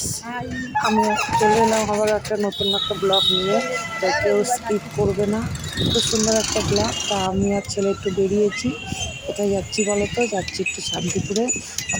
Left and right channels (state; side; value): identical; both; correlation 1.00